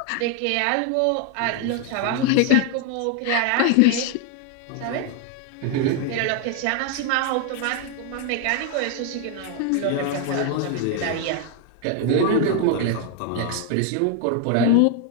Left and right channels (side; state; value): both; different; correlation 0.01